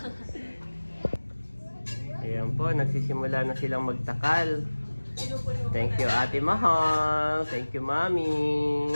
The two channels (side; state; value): both; inverted; correlation -1.00